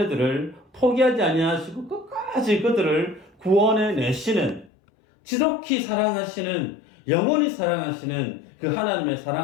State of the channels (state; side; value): drops out; right; at 4.7 s